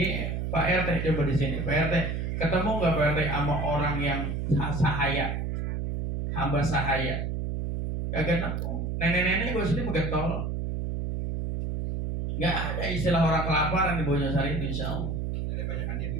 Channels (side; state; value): right; noise; hum, 2 dB below the sound